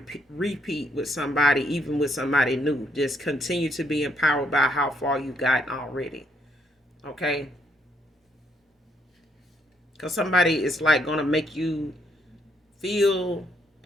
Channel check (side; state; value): both; normal; correlation 0.72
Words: with somebody, even with somebody new. Just continue to be empowered by how far you gotten already. Okay, because somebody is like gonna make you feel